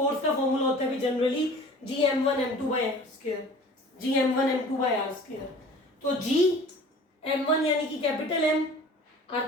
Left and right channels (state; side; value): normal; both; correlation 0.45